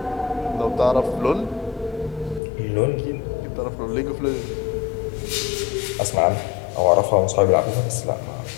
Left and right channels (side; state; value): right; drops out; at 2.4 s